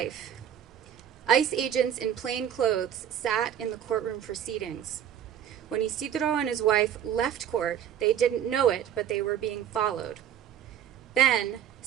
ICE agents in plain clothes sat in the courtroom proceedings. When Isidro and his wife left court, they didn't know it, but they were being followed. Then,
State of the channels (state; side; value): quieter; left; 9.8 dB